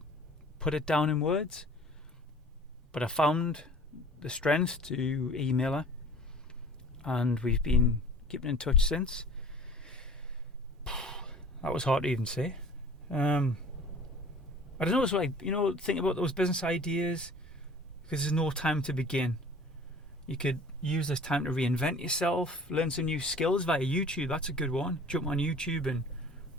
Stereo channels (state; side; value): normal; both; correlation 0.47